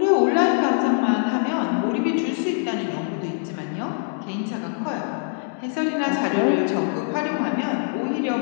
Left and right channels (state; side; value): silent; right; 57 dB below the other